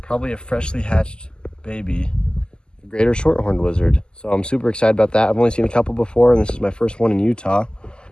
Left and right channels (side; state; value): right; late; 0.047 ms